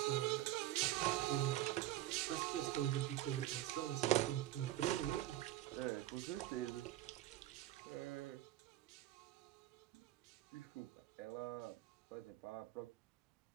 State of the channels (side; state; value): left; quieter; 14.6 dB